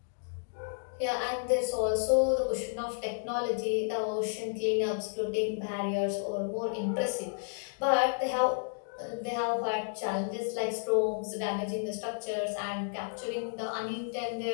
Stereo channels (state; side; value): silent; right; digital silence